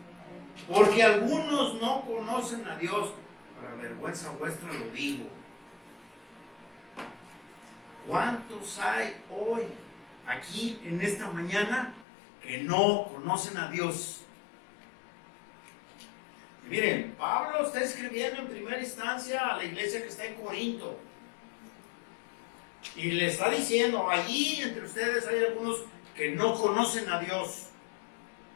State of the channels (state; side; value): drops out; right; at 12.1 s